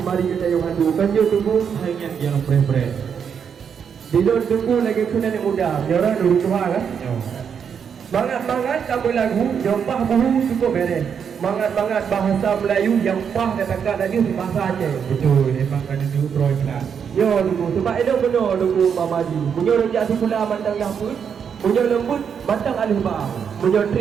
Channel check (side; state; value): left; quieter; 7.2 dB